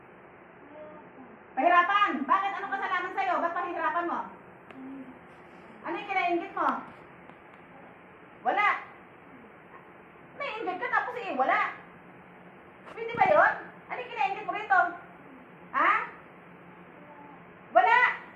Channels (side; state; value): both; identical; correlation 1.00